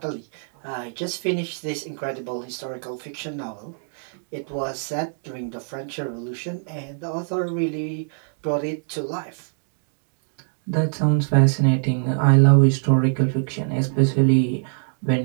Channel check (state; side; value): silent; left; digital silence